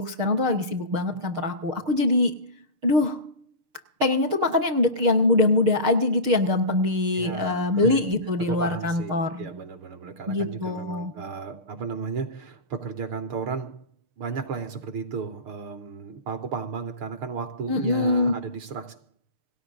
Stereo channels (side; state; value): left; late; 6.3 ms